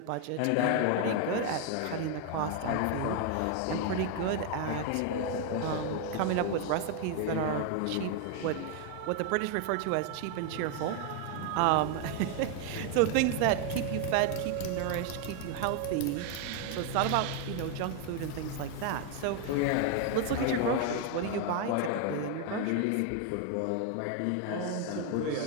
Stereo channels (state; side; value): different; both; correlation 0.00